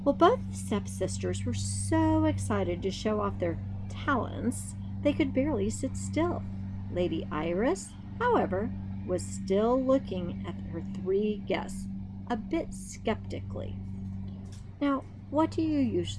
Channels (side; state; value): both; identical; correlation 1.00